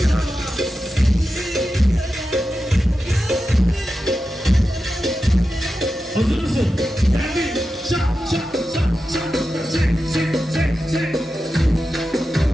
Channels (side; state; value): both; normal; correlation 0.91